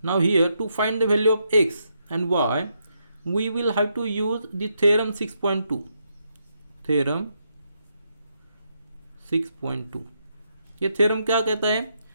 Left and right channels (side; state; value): both; inverted; correlation -0.79